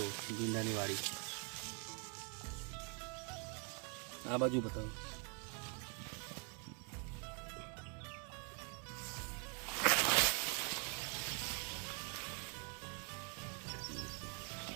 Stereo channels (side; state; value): left; quieter; 33.7 dB